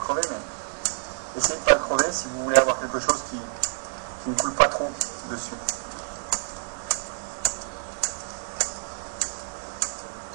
mais essayez de ne pas le crever si vous voulez avoir quelque chose qui ne coule pas trop dessus.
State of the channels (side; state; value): left; silent; digital silence